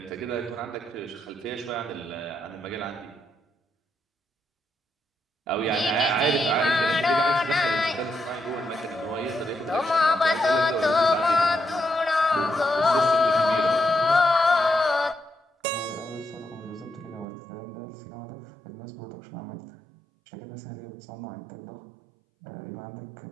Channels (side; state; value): left; drops out; at 17.2 s